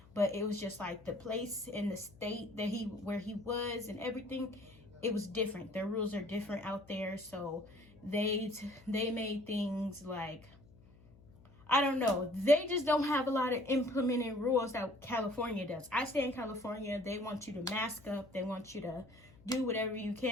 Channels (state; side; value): noise; left; hum, 24 dB below the sound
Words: But it was just like the place and the state that where he was and everything, it was different. Their rules are different out there. So they made things like, I don't know, they just don't have a lot of implementing rules that California does. I stay in California. They want you to mask up. They want you to do whatever you